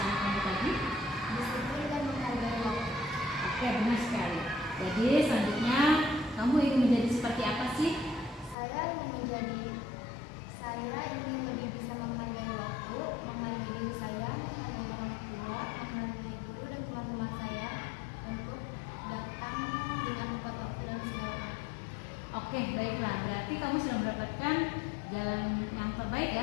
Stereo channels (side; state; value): right; drops out; at 8.6 s